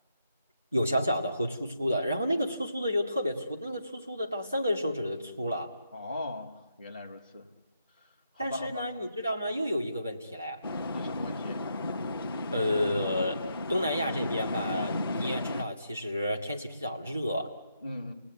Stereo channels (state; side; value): inverted; both; correlation -0.79